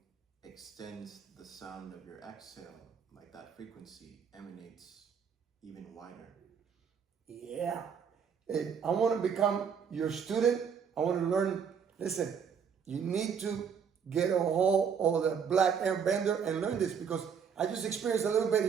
extends the sound of your exhale, like that frequency emanates even wider. Yeah. I want to become your student. I want to learn. Listen, you need to get a hold of the Black Aire Bender and learn this, because I just experienced a little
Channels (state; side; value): quieter; left; 7.0 dB